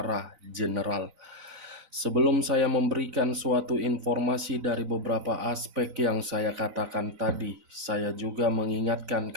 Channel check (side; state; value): left; late; 4.0 ms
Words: general. Sebelum saya memberikan suatu informasi dari beberapa aspek yang saya katakan tadi, saya juga mengingatkan